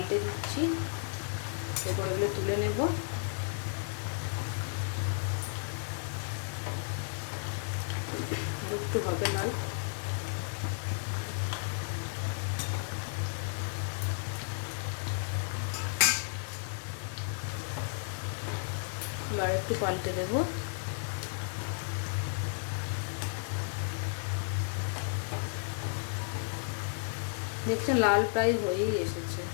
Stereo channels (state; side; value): silent; right; 55 dB below the other